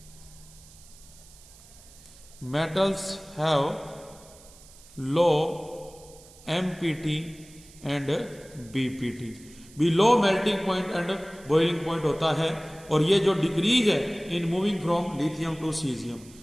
metals have low MPT and BPT, भी low melting point and boiling point होता है। और ये जो डिक्रीज है in moving from lithium to caesium.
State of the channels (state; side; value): noise; right; hiss, 23 dB below the sound